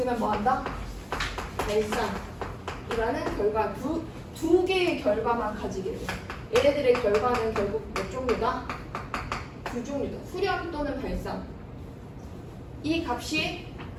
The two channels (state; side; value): identical; both; correlation 1.00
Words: 뭐 한다? 발산이라는 결과 두 개의 결과만 가지게 돼. 얘네들의 결과는 결국 몇 종류다? 두 종류다. 수렴 또는 발산. 이 값이